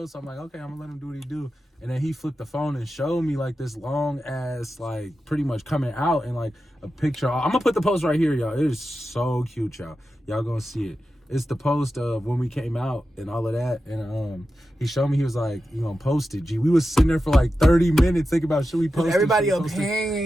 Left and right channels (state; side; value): normal; both; correlation 0.91